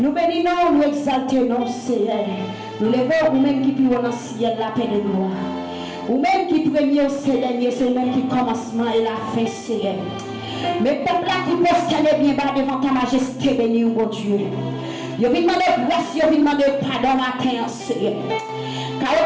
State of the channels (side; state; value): both; identical; correlation 1.00